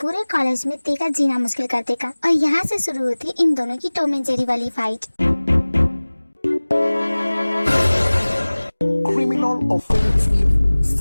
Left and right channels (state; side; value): inverted; both; correlation -1.00